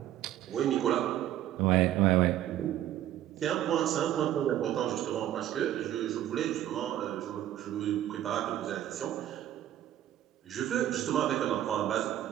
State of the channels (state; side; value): quieter; left; 12.4 dB